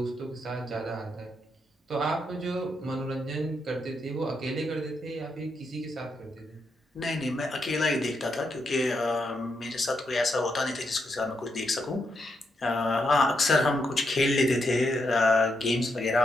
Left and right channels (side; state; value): both; normal; correlation 0.81